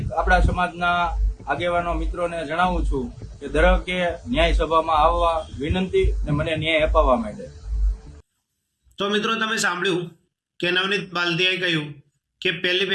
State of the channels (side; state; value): both; identical; correlation 1.00